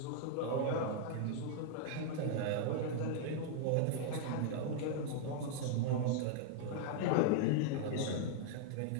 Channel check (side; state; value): both; different; correlation -0.01